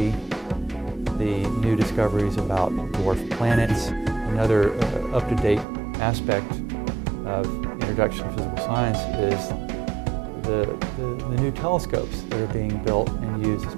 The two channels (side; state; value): left; drops out; at 5.7 s